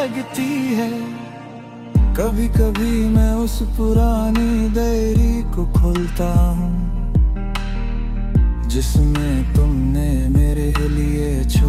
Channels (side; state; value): both; identical; correlation 1.00